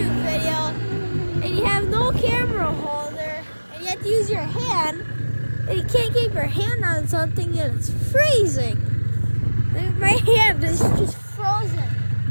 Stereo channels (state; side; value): inverted; both; correlation -1.00